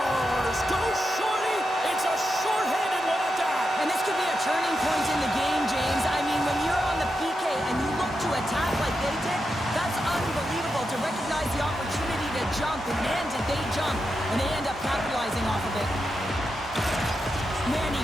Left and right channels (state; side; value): normal; both; correlation 0.87